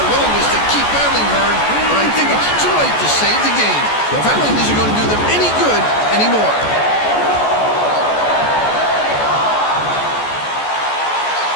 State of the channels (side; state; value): right; late; 14 ms